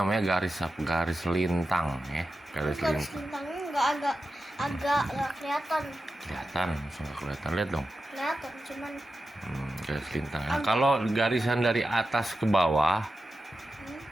garis lintang ya. Garis garis lintang. bintangnya nggak kelihatan. Kelihatan, langsung nggak kelihatan, lihat dong. Kelihatan, cuman Garis lintang. Nah, kalau garisan dari atas ke bawah,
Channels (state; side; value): normal; both; correlation 0.92